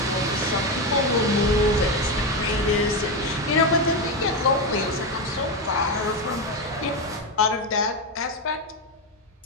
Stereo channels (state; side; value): normal; both; correlation 0.12